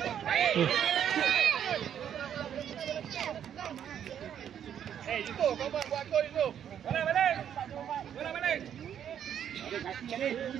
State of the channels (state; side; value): quieter; left; 9.3 dB